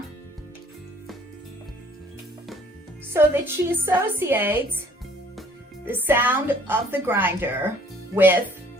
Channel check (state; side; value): normal; both; correlation 0.57